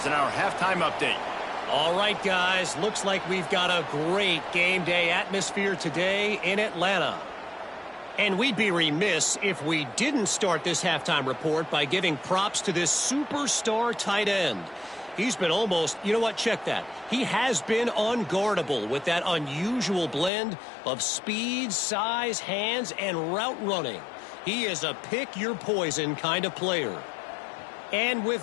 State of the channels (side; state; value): right; drops out; at 20.3 s